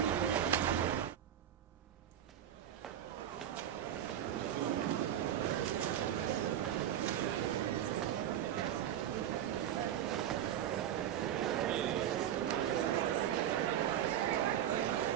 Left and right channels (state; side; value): quieter; left; 10.6 dB